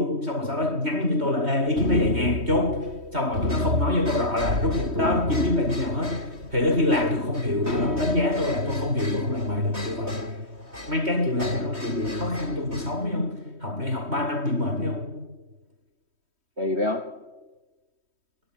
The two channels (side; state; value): left; late; 3.2 ms